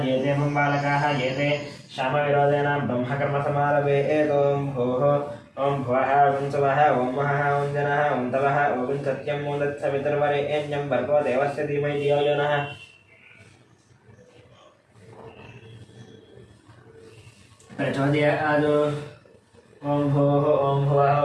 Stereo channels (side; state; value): both; identical; correlation 1.00